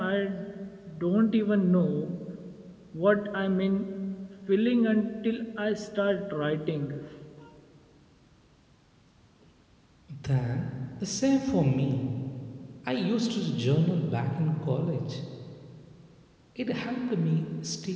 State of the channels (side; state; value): both; identical; correlation 1.00